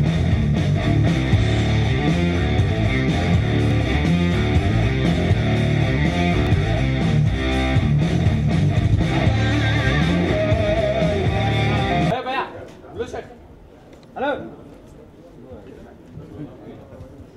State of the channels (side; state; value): both; identical; correlation 1.00